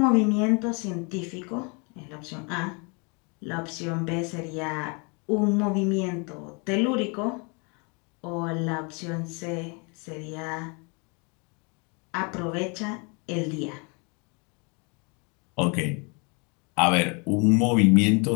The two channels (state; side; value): quieter; right; 33.0 dB